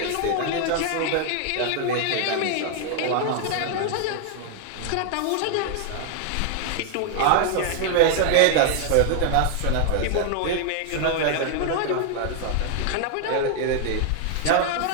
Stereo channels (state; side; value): different; both; correlation 0.00